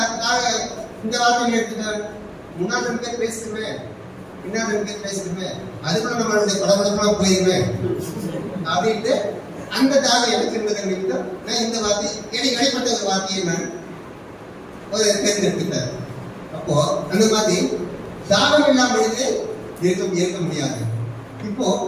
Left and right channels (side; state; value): both; identical; correlation 1.00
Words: இந்த வார்த்தையை எடுத்துட்டேன்? முன்னாள் 2 பேர் பேசிடுவேன், பின்னால் 2 பேர் பேசிடுவேன், அதுக்குள்ள நம்மளுடைய படப்படப்பெல்லாம் போயிருவேன் அப்படின்ட்டு அந்த தாகம் எனக்கு இருந்தது. நான் இந்த வார்த்தை எனக்கு வெளிப்பட்ட ஒரு வார்த்தையை நான் ஒரு தேர்ந்தெடுத்துட்டேன். அப்போ அந்த மாதிரி தாகம் இல்லாமல் இருக்க முடியாது. இப்போ